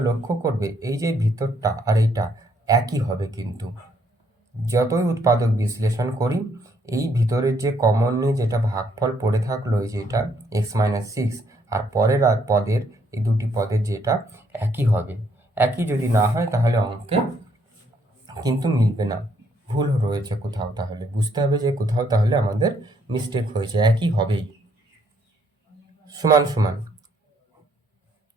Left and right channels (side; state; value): both; normal; correlation 0.70